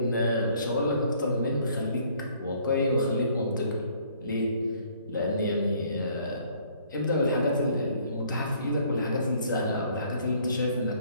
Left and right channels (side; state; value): both; inverted; correlation -0.61